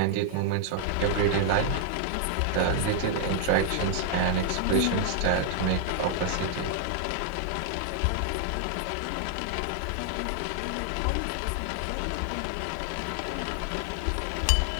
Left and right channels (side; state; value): both; different; correlation 0.00